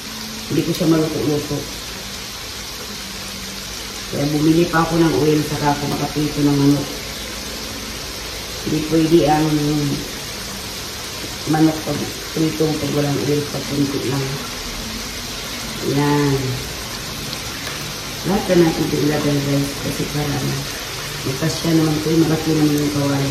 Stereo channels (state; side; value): identical; both; correlation 1.00